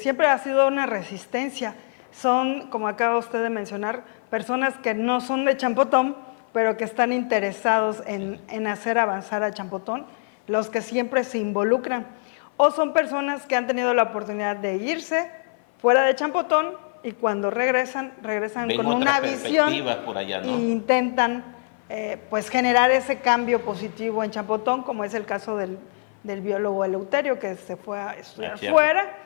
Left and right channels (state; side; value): silent; right; 56 dB below the other